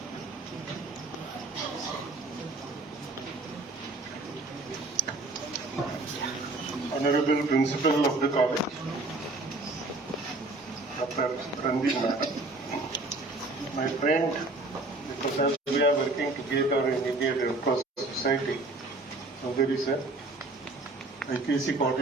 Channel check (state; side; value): quieter; left; 3.0 dB